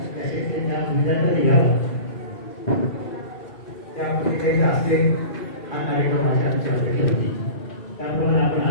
त्या विद्यार्थ्यांनी घ्यावा, त्यामध्ये काही असते हा कार्यक्रम आमची अपेक्षा होती. त्याप्रमाणे आपण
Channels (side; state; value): right; late; 2.3 ms